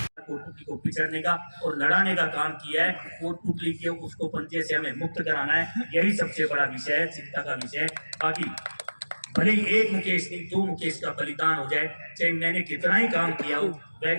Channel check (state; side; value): inverted; both; correlation -1.00